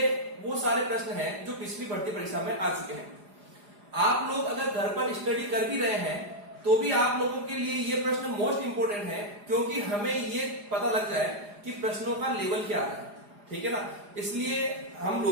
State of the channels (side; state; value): left; late; 4.9 ms